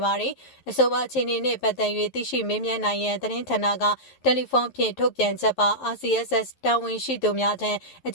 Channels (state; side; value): late; right; 11 ms